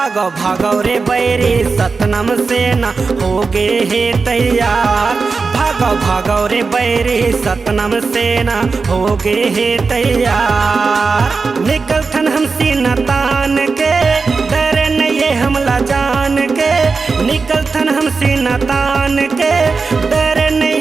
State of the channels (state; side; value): quieter; left; 4.5 dB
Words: भागो रे बैरी सतनाम से न हो गए है तैयार। भागो भागो रे बैरी सतनाम से न हो गए है तैयार। निकलथन हम सीना तान के डर नहीं हमला जान के। निकलथन हम सीना तान के डर